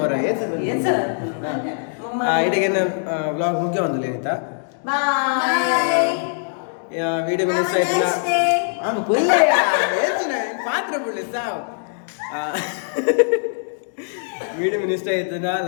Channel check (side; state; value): right; silent; digital silence